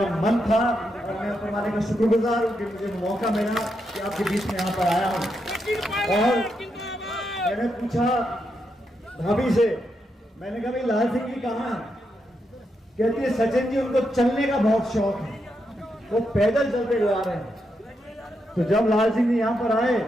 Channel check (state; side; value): normal; both; correlation 0.83